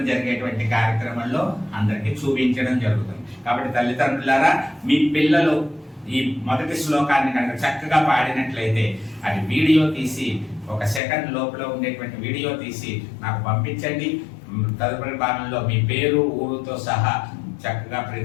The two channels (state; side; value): drops out; right; at 11.0 s